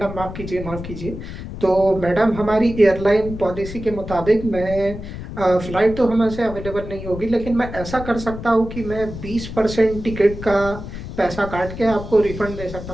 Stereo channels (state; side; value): noise; left; rumble, 10 dB below the sound